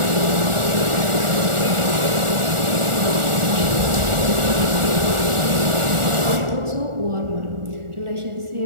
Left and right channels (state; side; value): late; left; 1.4 ms